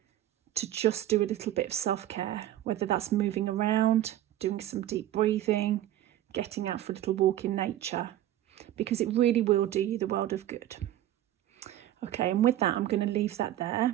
to just do a little bit of self-care, whether that's moving around, doing some deep breathing, getting out for a little walk in nature, because it really will do you the world of good. Okay, and with that, I'm going to leave that there.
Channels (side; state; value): left; quieter; 13.1 dB